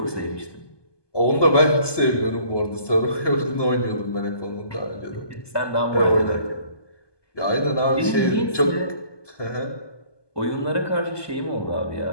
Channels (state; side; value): late; right; 1.2 ms